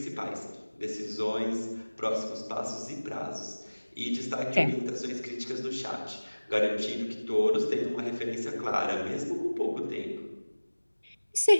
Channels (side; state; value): both; inverted; correlation -1.00